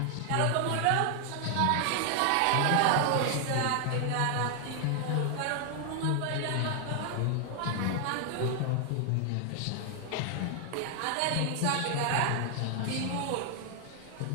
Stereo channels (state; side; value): different; both; correlation 0.00